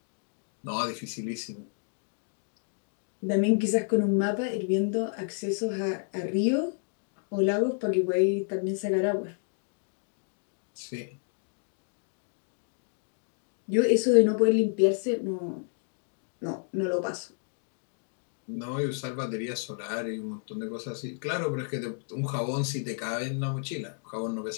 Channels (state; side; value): silent; right; 58 dB below the other